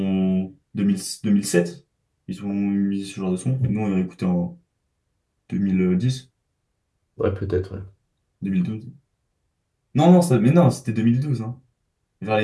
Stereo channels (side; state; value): both; identical; correlation 1.00